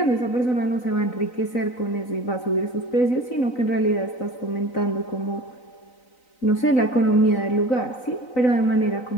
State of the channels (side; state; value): right; late; 3.9 ms